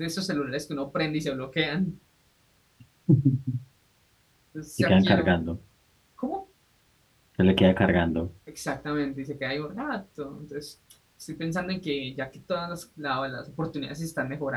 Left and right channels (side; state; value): both; identical; correlation 1.00